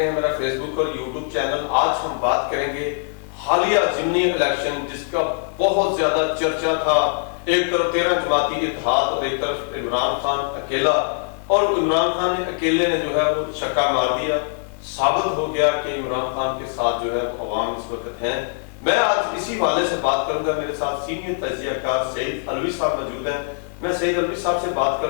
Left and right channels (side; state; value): right; silent; digital silence